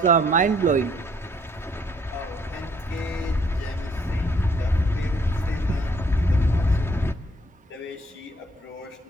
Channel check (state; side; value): normal; both; correlation 0.65